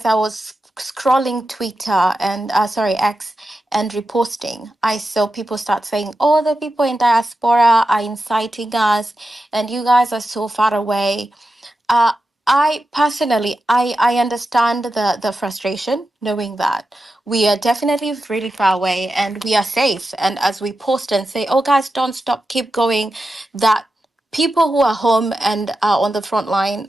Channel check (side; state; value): both; normal; correlation 0.90